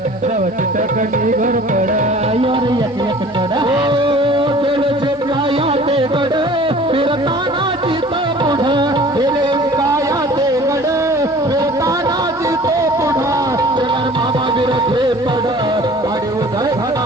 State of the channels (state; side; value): normal; both; correlation 0.47